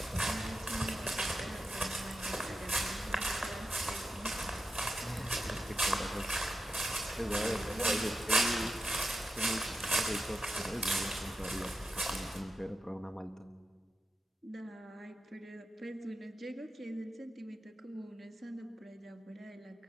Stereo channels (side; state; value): both; normal; correlation 0.89